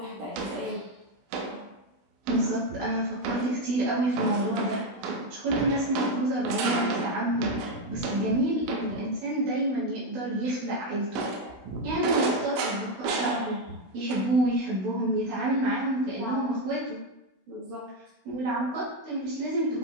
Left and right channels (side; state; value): left; late; 16 ms